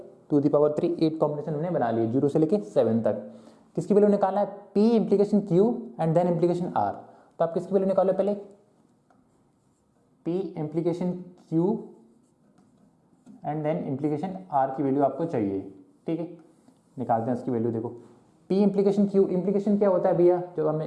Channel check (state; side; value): identical; both; correlation 1.00